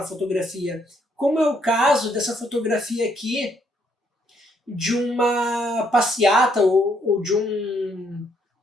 fotografia. Como é o caso dessa fotografia aqui, de uma passeata ou de um...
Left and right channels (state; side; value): normal; both; correlation 0.71